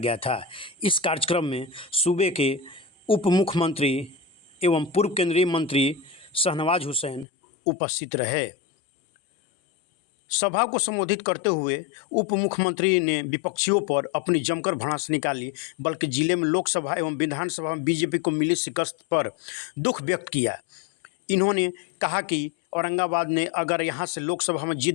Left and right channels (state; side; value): drops out; right; at 7.2 s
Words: था। इस कार्यक्रम में सूबे के उप मुख्यमंत्री एवं पूर्व केंद्रीय मंत्री शाहनवाज हुसैन उपस्थित रहे। सभा को संबोधित करते हुए उप मुख्यमंत्री ने विपक्षियों पर अपनी जमकर भड़ास निकाली, बल्कि जिले में लोकसभा एवं विधानसभा में बीजेपी को मिली शिकस्त पर दुख व्यक्त किया। इन्होंने कहा कि औरंगाबाद ने अगर यहां से लोकसभा में